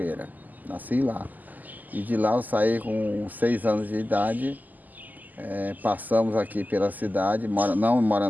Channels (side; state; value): left; late; 0.083 ms